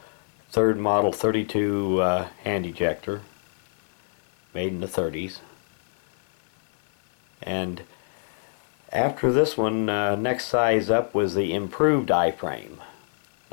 third model 32 hand ejector, made in the 30s. And after this one, next size up was the improved I-frame.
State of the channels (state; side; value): silent; right; digital silence